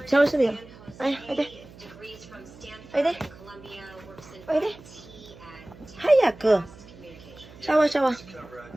シャワーするよ。おいで。おいで。おいで。早く。シャワーシャワー。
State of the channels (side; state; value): right; noise; hum, 20 dB below the sound